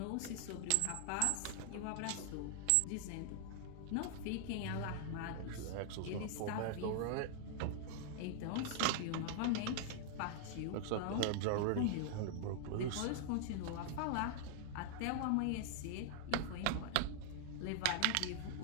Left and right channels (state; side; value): different; both; correlation 0.00